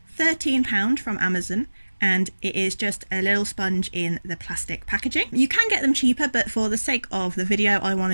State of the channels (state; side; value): inverted; both; correlation -1.00